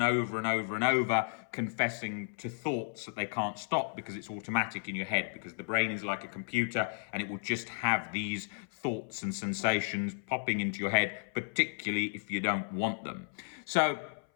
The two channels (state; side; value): silent; right; 55 dB below the other